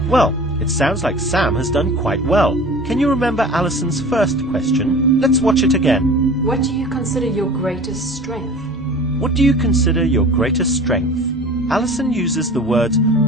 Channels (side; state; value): both; normal; correlation 0.40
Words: Well, it sounds like Sam has done quite well. Can you remember Alison's first question? Let's watch it again. What do you consider your greatest strength? What do you consider your greatest strength? Alison uses the words,